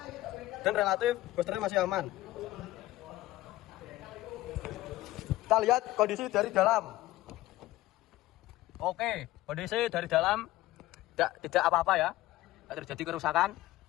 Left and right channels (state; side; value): quieter; right; 16.7 dB